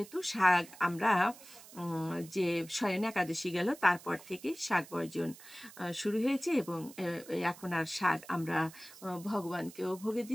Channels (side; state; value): right; noise; hiss, 19 dB below the sound